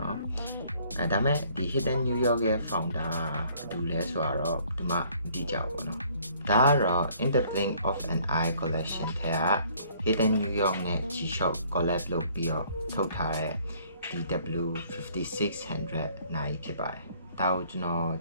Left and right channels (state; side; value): inverted; both; correlation -0.60